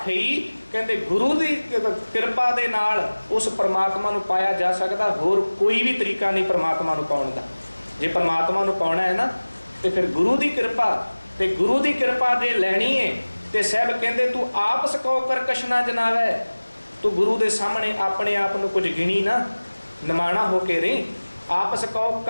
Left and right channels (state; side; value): inverted; both; correlation -1.00